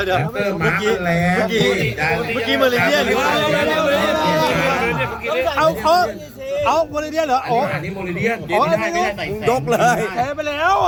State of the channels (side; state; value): both; identical; correlation 1.00